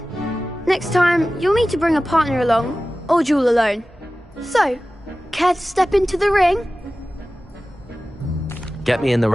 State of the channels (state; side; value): normal; both; correlation 0.96